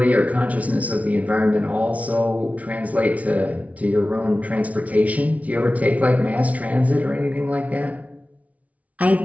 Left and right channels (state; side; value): late; left; 0.068 ms